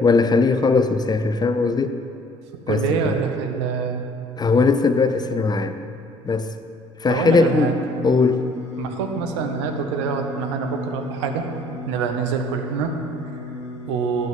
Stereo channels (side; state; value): both; normal; correlation 0.57